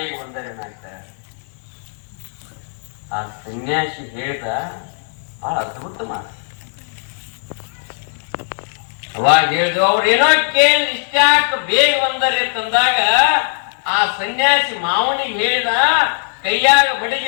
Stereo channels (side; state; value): right; silent; 67 dB below the other